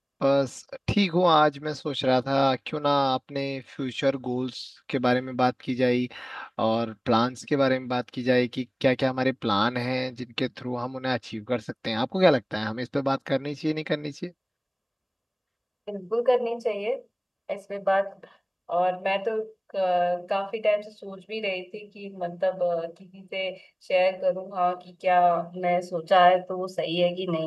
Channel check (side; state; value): both; identical; correlation 1.00